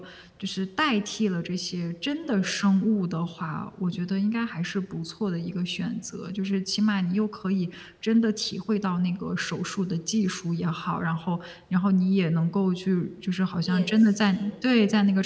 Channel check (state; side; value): identical; both; correlation 1.00